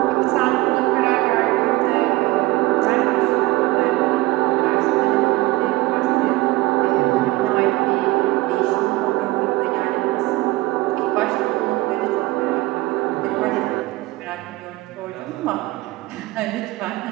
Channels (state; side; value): quieter; left; 19.2 dB